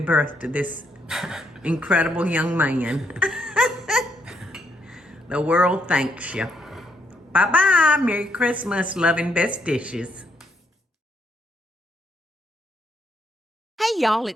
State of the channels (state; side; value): normal; both; correlation 0.75